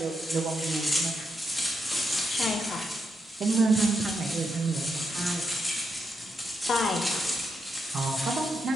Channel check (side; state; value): both; normal; correlation 0.82